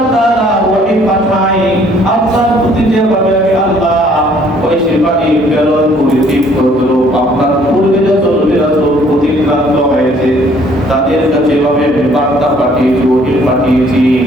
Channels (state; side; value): normal; both; correlation 0.60